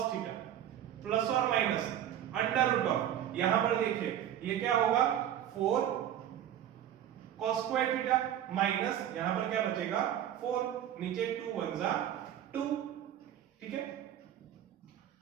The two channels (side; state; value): left; quieter; 10.8 dB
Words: थीटा प्लस और माइनस अंडर रूट ऑफ, यहां पर देखिए ये क्या होगा 4 cos स्क्वायर थीटा माइनस यहां पर क्या बचेगा 4, नीचे 2 1 जा 2, ठीक है।